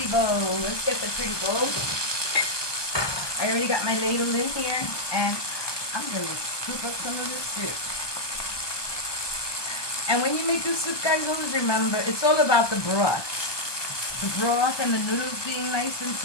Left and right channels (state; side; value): late; right; 1.2 ms